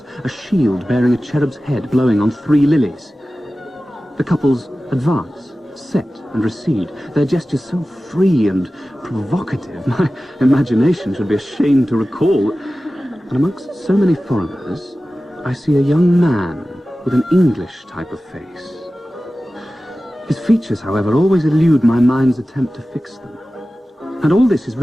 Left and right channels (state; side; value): normal; both; correlation 0.96